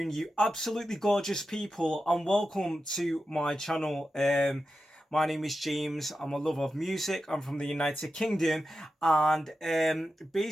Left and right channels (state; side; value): normal; both; correlation 0.90